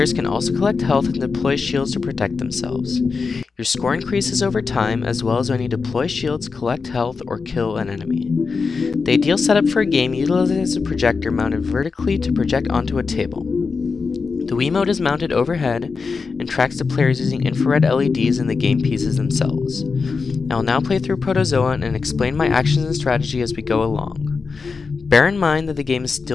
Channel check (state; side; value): quieter; right; 4.8 dB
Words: can also collect health and deploy shields to protect themselves. Your score increases over time, as well as when you deploy shields, collect health, or kill an enemy. The ideal setup for a game utilizes a projector mounted vertically to project onto a table. The Wiimote is mounted overhead and tracks the players using infrared LEDs in the game pieces themselves. I will now play through Protozoa and explain my actions and strategy as we go along. Bear in mind that the game is